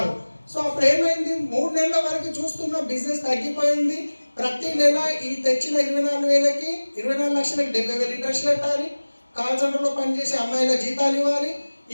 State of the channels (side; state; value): both; inverted; correlation -1.00